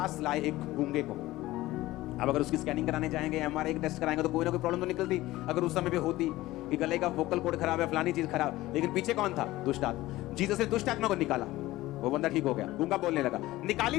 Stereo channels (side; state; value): right; quieter; 17.4 dB